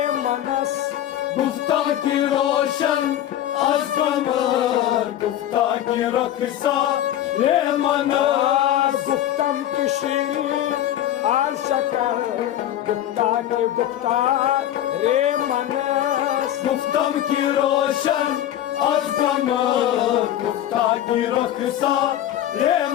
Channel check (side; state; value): right; quieter; 12.0 dB